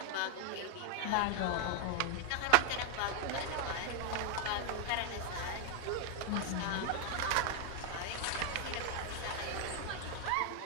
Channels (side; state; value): both; different; correlation 0.00